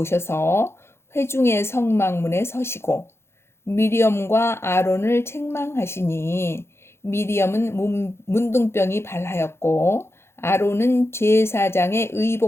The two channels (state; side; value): late; right; 0.12 ms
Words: 회중의 성막문에 서시고 미리엄과 아론을 책망하시니 미리엄은 문둥병이 발하였고 아론은 제사장의